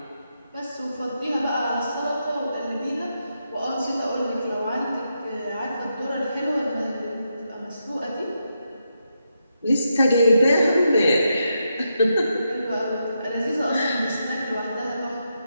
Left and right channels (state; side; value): inverted; both; correlation -0.84